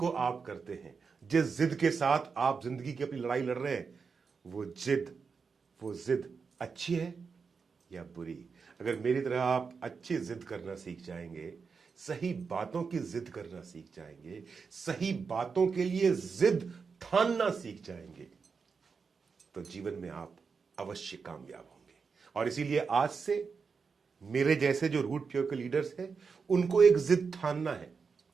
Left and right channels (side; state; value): left; quieter; 5.3 dB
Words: आप करते हैं, जिस जिद के साथ आप जिंदगी की अपनी लड़ाई लड़ रहे हैं, वो जिद अच्छी है या बुरी। अगर मेरी तरह आप अच्छी जिद करना सीख जाएंगे, सही बातों की जिद करना सीख जाएंगे, सही बातों के लिए जिद ठानना सीख जाएंगे, तो जीवन में आप अवश्य कामयाब होंगे। और इसीलिए आज से मेरे जैसे जो रूट प्योर के लीडर्स हैं, उनको एक जिद ठानना है,